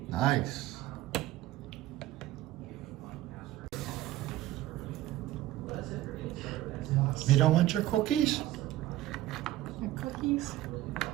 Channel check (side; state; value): left; quieter; 15.1 dB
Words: Nice. You don't want your cookies? Your cookies?